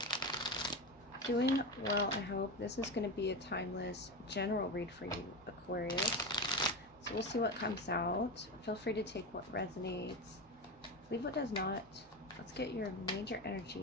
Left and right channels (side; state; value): both; normal; correlation 0.20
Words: Doing well, I hope. This is going to be a timeless general read for you, Aquarius. So we'll see what comes out. Feel free to take what resonates. Leave what does not. Let's get your major